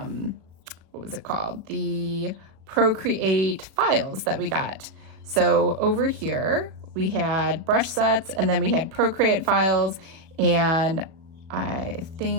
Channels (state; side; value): late; left; 37 ms